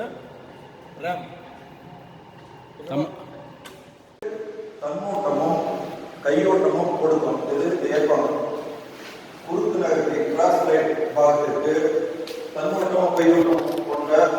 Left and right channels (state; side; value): identical; both; correlation 1.00